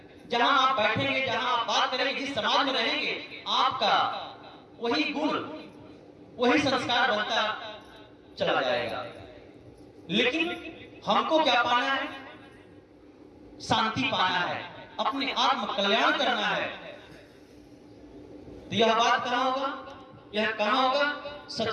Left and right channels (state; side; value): identical; both; correlation 1.00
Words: जहां आप बैठेंगे, जहां आप बात करेंगे, जिस समाज में रहेंगे, आपका वही गुण, वही संस्कार बनता चला जाएगा। लेकिन हमको क्या पाना है? शांति पाना है, अपने आत्म कल्याण करना है। तो यह बात कहां होगा? यह कहां होगा?